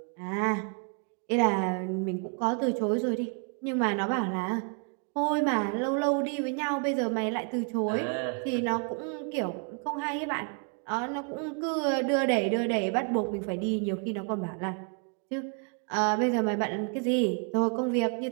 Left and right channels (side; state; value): left; quieter; 39.2 dB